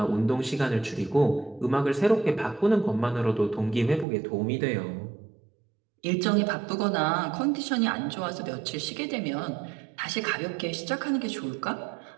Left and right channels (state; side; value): drops out; left; at 4.0 s